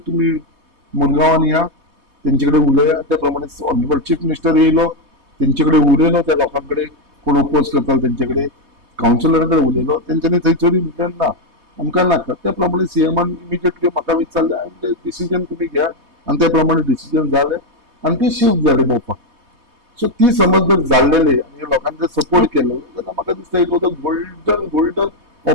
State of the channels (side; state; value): left; late; 3.2 ms